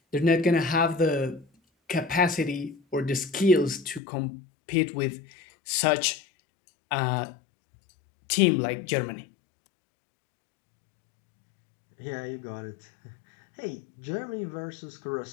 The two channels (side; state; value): right; drops out; at 4.0 s